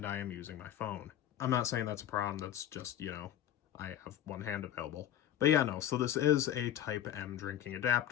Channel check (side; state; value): right; quieter; 11.4 dB